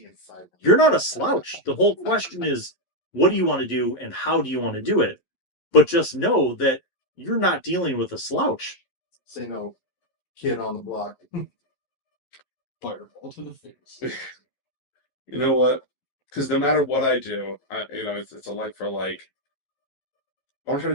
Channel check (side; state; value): right; late; 11 ms